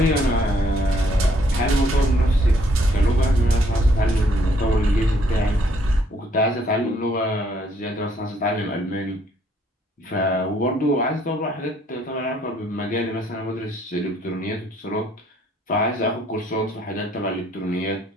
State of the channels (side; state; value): both; normal; correlation 0.66